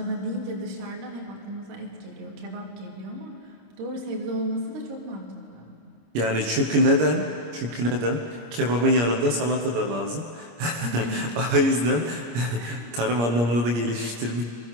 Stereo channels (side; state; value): left; late; 25 ms